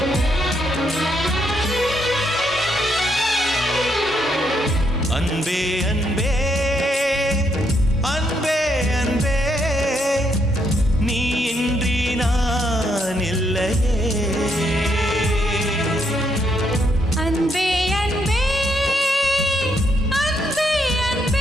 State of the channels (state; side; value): normal; both; correlation 0.76